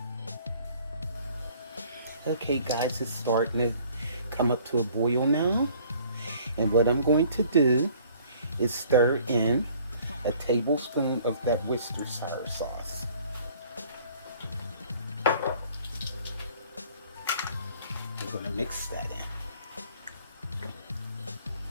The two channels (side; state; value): both; inverted; correlation -0.55